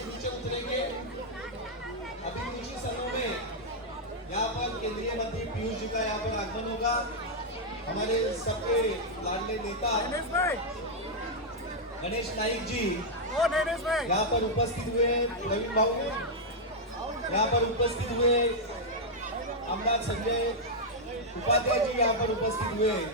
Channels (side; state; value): both; normal; correlation -0.04